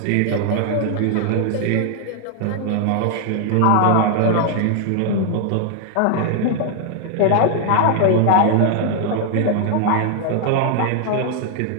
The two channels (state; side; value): different; both; correlation 0.00